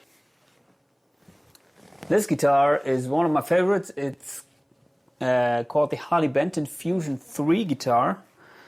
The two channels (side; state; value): both; identical; correlation 1.00